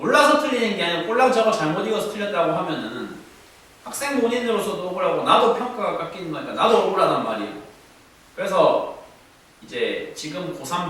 틀리는 게 아니라 꼴랑 저거 잘못 읽어서 틀렸다고 하면은 학생 본인으로서도 억울하고 나도 평가가 깎이는 거니까 나도 억울하단 말이에요. 그래서 이제 지금 고3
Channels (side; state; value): both; identical; correlation 1.00